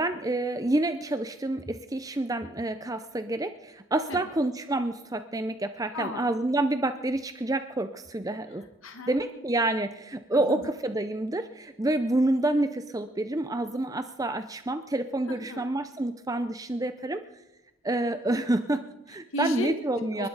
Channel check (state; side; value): normal; both; correlation 0.68